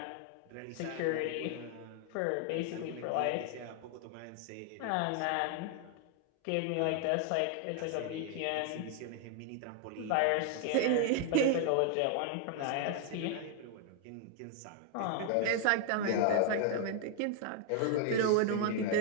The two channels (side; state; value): both; different; correlation 0.00